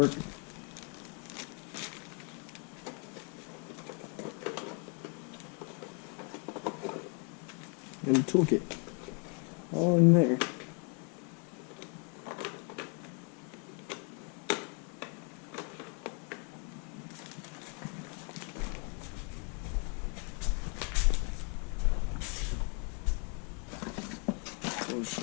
And a toolkit. All in there. Oh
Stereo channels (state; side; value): quieter; right; 38.2 dB